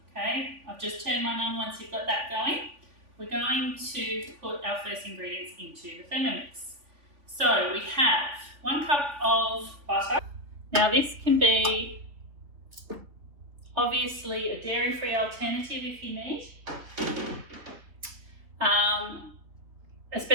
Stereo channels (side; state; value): left; late; 3.5 ms